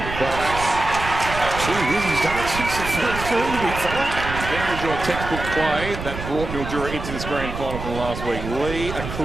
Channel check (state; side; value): noise; right; rumble, 8 dB below the sound